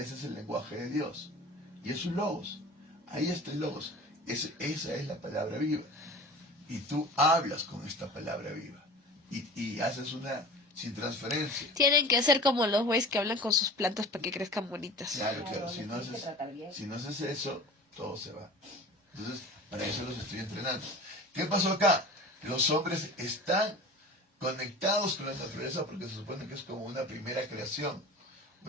es el lenguaje de Dios. Y es un logos. Ahí está el logos. Esa es la palabra viva. Y tú hablas con esta palabra viva. Y haces una sin transferencia. Tienen que ser como los güeyes que hablan con sus plantas para que crezcan bonitas. Claro. Claro, Si les no tienes que tratar bien. haces eso, todo se va. Entonces, para eso los estoy entrenando. ¿Qué pasó acá? Los hombres están conectados con la naturaleza porque se supone que es como una primera creación.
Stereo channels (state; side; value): normal; both; correlation 0.37